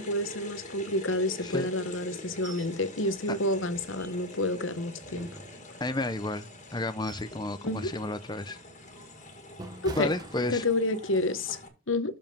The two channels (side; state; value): both; normal; correlation 0.09